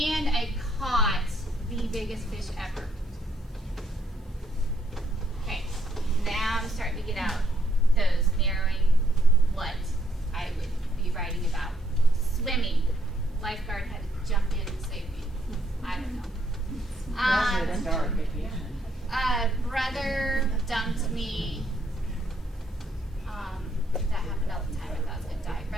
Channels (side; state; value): both; normal; correlation 0.72